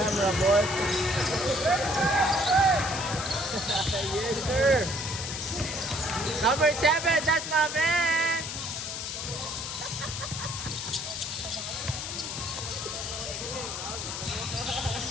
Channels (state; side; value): noise; left; hiss, 5 dB below the sound